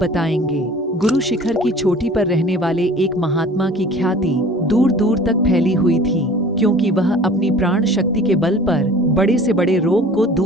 गुरु शिखर की चोटी पर रहने वाले एक महात्मा की ख्याति दूर दूर तक फैली हुई थी, क्योंकि वह अपनी प्राण शक्ति के बल पर बड़े से बड़े रोग को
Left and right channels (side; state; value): both; normal; correlation 0.46